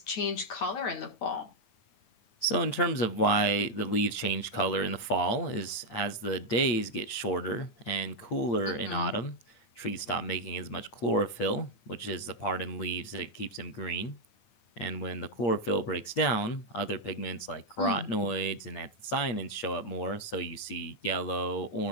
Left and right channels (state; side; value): late; right; 8.6 ms